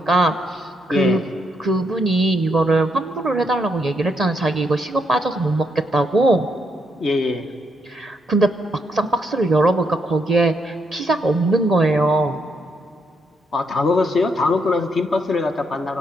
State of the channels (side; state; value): both; normal; correlation 0.77